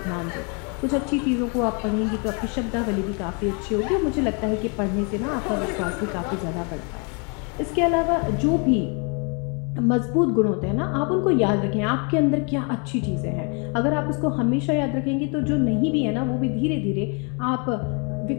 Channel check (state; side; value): quieter; right; 35.6 dB